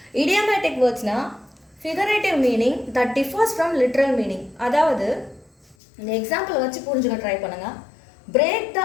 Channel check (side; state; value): right; drops out; at 5.8 s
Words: இடியோமேட்டிக் வேர்ட்ஸ்னால் figurative meaning that differs from literal meaning. அதாவது இந்த எக்ஸாம்பிள் வச்சு புரிஞ்சுக்க ட்ரை பண்ணுங்கள். பிரேக்